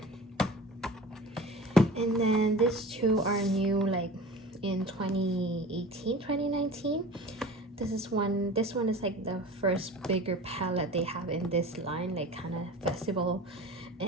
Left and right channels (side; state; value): both; normal; correlation 0.38